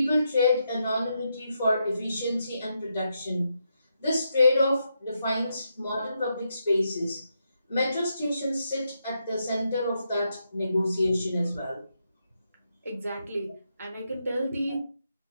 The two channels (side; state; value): both; inverted; correlation -0.82